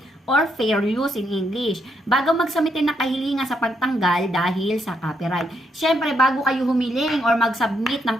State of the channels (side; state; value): both; normal; correlation 0.76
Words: or fair use in English bago magsubmitin ng kahilingan sa pagtanggal dahil sa copyright. Siyempre, bago kayo humiling or mag-submit